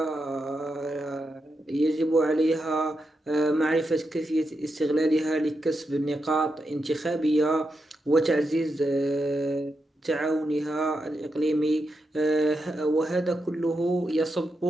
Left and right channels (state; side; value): normal; both; correlation 0.86